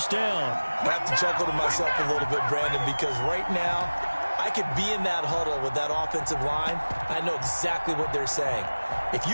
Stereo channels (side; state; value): both; inverted; correlation -1.00